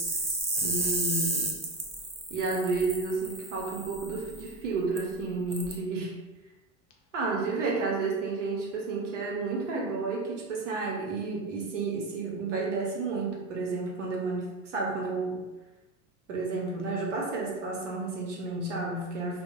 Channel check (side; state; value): left; quieter; 3.1 dB